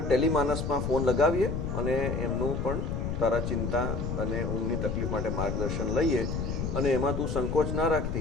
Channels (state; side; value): noise; left; rumble, 2 dB below the sound